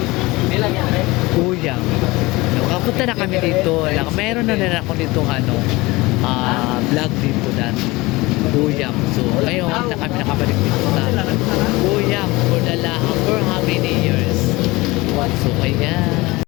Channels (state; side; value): quieter; right; 21.7 dB